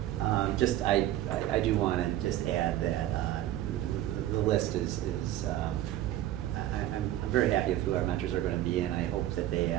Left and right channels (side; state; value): left; quieter; 13.4 dB